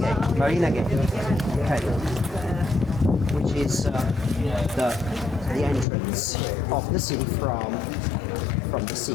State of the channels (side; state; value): right; drops out; at 5.9 s